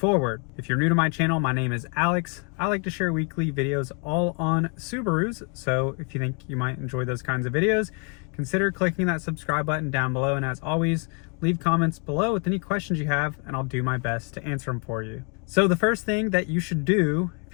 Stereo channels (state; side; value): quieter; right; 35.6 dB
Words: If you're new to my channel, my name is Alex. I like to share weekly videos all on Subarus, so if you think you might enjoy those kinds of videos, consider clicking that subscribe button down below, and as always, leave comments below with any questions you have and I'll do my best to answer them for you. So the first thing that you should do if